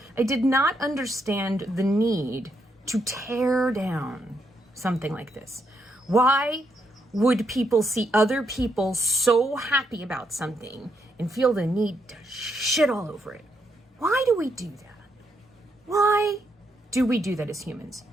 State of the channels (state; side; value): normal; both; correlation 0.78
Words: did not understand the need to tear down something like this. Why would people see other people so happy about something and feel the need to shit all over it? Why do we do that? Why do we do that as humans?